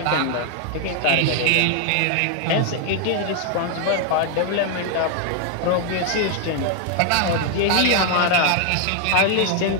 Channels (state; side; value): different; both; correlation 0.00